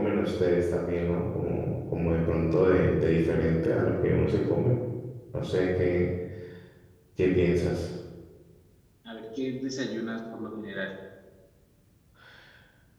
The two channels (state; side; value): identical; both; correlation 1.00